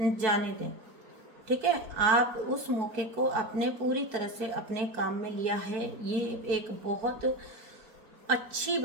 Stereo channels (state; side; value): late; left; 4.6 ms